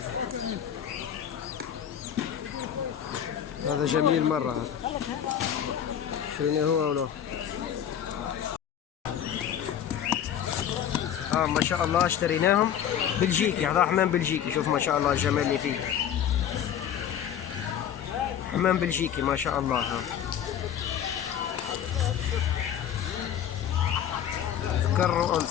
هذا جميل مرة هذا. شنو هو ولا؟ ما شاء الله اشتريناهم بلجيكي. هذا حمام بلجيكي. شوف ما شاء الله الجمال اللي فيه. حمام بلجيكي ما شاء الله. ذكر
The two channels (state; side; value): quieter; right; 9.5 dB